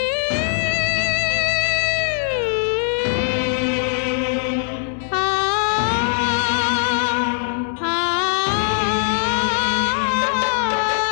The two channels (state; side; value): silent; right; 66 dB below the other